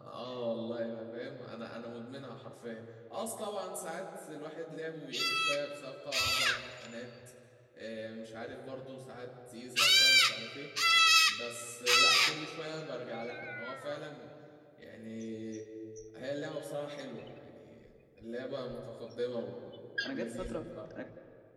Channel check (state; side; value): identical; both; correlation 1.00